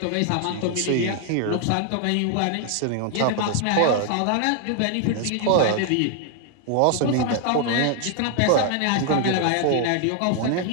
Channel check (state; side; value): different; both; correlation 0.00